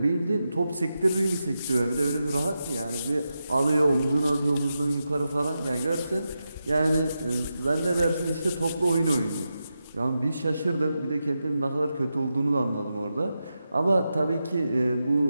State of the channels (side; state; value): both; inverted; correlation -0.89